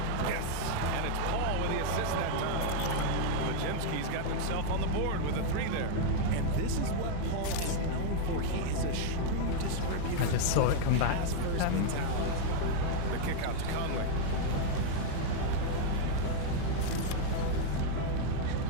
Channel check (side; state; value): both; different; correlation 0.00